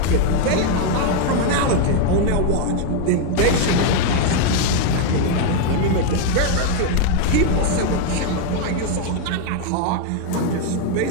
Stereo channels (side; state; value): both; different; correlation 0.01